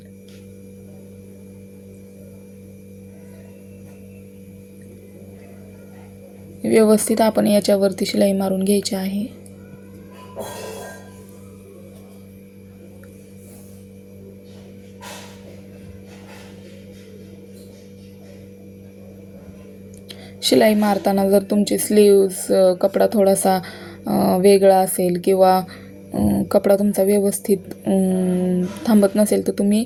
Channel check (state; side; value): identical; both; correlation 1.00